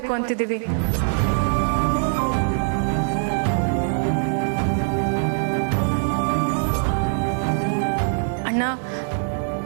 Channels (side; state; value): left; silent; digital silence